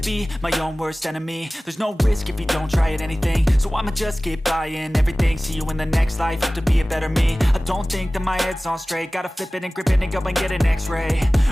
my own worst enemy. There's no risk if you don't try at anything, so I'ma just keep buying everything. See you in the next life, have to be a better me. I don't think that my head's on straight, gotta flip it and grip it and go and get an x-ray.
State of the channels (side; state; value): both; normal; correlation 0.98